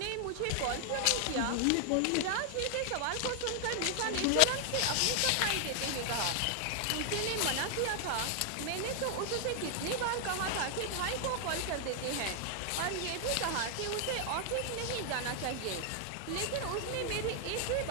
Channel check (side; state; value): both; different; correlation 0.00